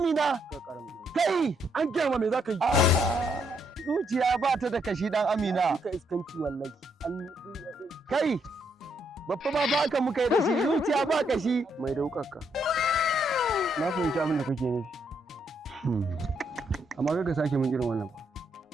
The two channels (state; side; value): normal; both; correlation 0.75